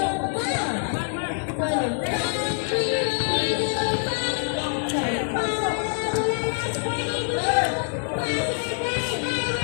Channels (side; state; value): right; silent; 62 dB below the other